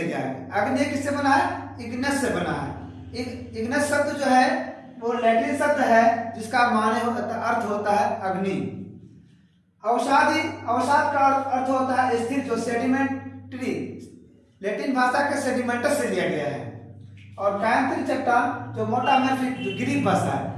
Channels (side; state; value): both; identical; correlation 1.00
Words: आए। अग्नि किससे बना है? इग्नस से बना है। इग्नस शब्द जो है वो लैटिन शब्द है जिसका अर्थ होता है अग्नि। अवसाद का अर्थ होता है स्थिर, जो सेडिमेंट्री, लैटिन भाषा के सेडिमेंटस से लिया गया है। और कायांतरित चट्टान जो मेटामॉर्फिक, जो ग्रीक भाषा है।